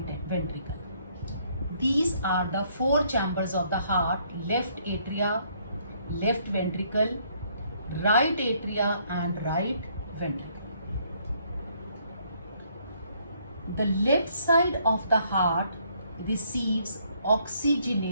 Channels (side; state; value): both; inverted; correlation -0.67